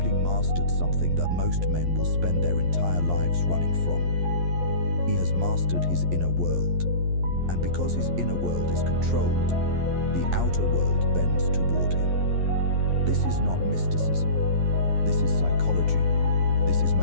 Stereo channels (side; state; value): left; late; 11 ms